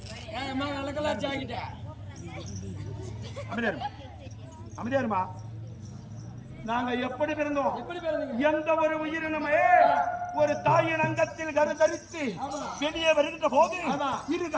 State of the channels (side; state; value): both; identical; correlation 1.00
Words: என் அம்மா நல்லக்கெல்லாம் ஜாக்கிட்டா அமைதியாருமா நாங்க எப்படி பிறந்தோம்? எப்படி பிறந்தீங்க? எந்த ஒரு உயிரினமே ஒரு தாயின் அங்கத்தில் கருத்தரித்து வெளியே வருகின்ற போது இரு